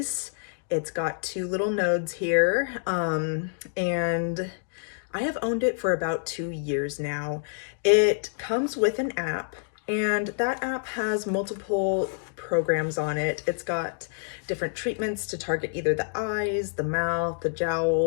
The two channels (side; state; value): right; silent; digital silence